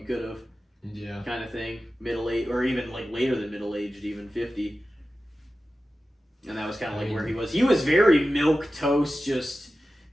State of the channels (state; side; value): normal; both; correlation 0.94